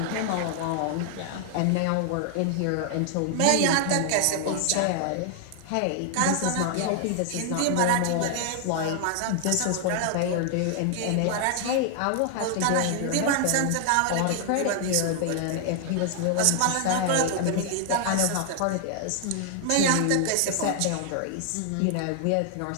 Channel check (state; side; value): different; both; correlation 0.00